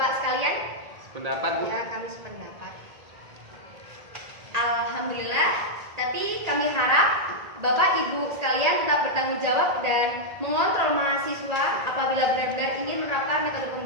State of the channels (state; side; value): late; left; 1.8 ms